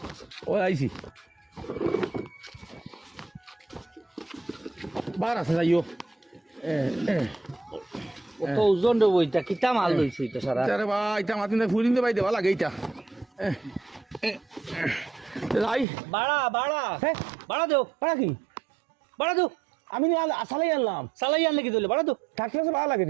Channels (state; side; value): drops out; left; at 15.9 s